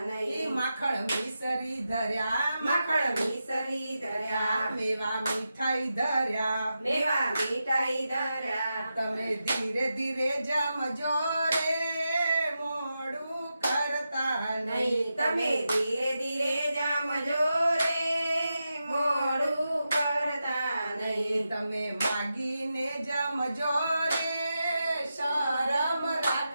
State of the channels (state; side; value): inverted; both; correlation -0.89